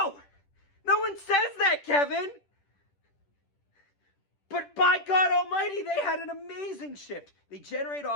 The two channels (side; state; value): right; late; 10 ms